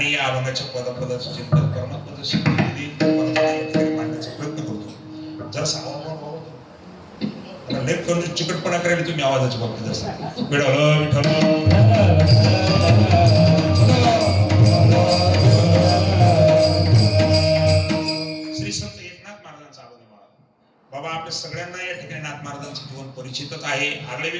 या अभंगाच्या पदापदाचं चिंतन परमात्माचं शिकवणी या ठिकाणी मांडण्याचा प्रयत्न करतो. जर लेप करून चिकटपणा करायला तुम्ही आवाजाच्या बाबतीत असता विठ्ठल विठ्ठल श्री संत एकनाथ महाराजांचा आवाज बाबा आपल्या सगळ्यांना या ठिकाणी नाथ महाराजांचं जीवन परिचितच आहे. आगळे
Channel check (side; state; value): both; identical; correlation 1.00